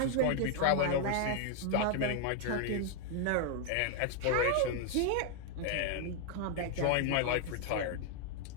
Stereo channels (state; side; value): different; both; correlation 0.00